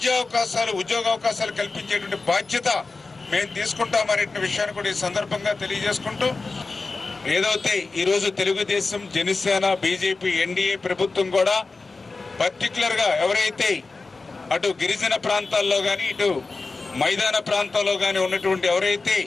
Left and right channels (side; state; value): right; quieter; 3.8 dB